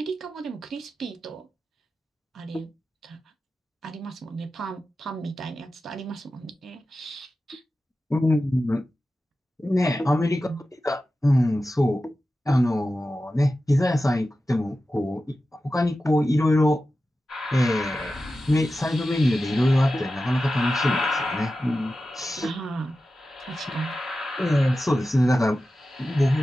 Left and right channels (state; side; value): normal; both; correlation 0.93